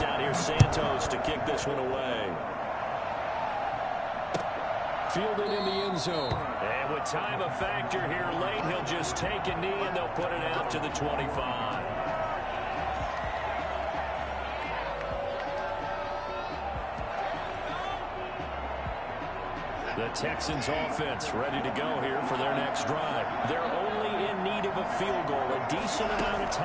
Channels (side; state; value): both; identical; correlation 1.00